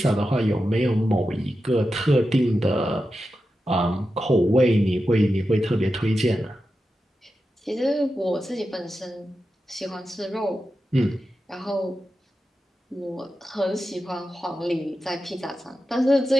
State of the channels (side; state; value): both; normal; correlation 0.91